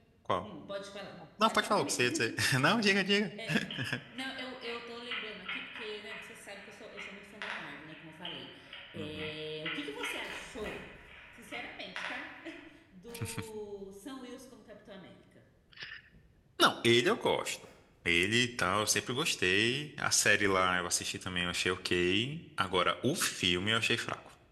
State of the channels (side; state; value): both; identical; correlation 1.00